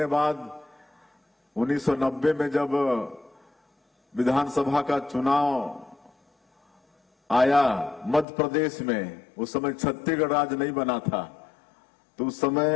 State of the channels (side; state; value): right; drops out; at 8.2 s